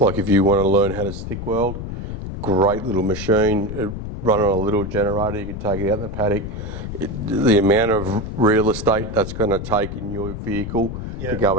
like if you want to learn how to stick weld, great little machine, run on a little generator, you can take it out in the paddock. The amount of real estate that's going to take in your vehicle to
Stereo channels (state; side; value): noise; left; rumble, 7 dB below the sound